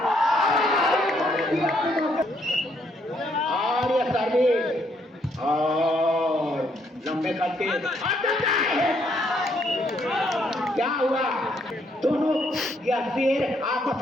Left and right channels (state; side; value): normal; both; correlation 0.71